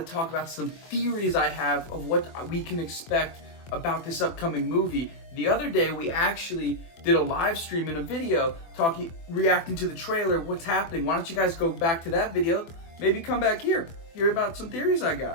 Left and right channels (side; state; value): right; late; 24 ms